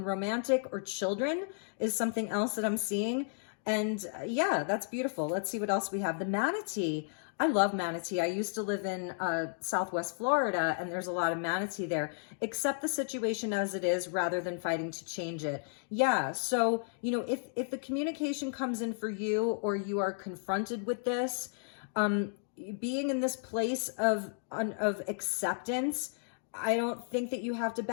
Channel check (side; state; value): right; silent; digital silence